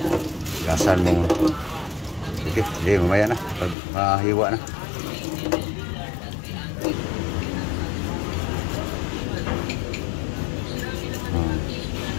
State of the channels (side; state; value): right; drops out; at 3.8 s